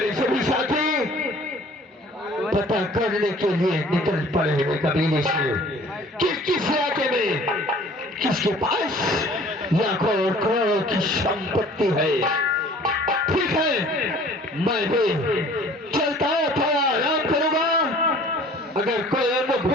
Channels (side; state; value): both; normal; correlation 0.50